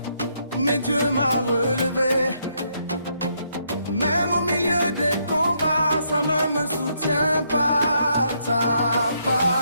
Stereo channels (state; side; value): inverted; both; correlation -0.74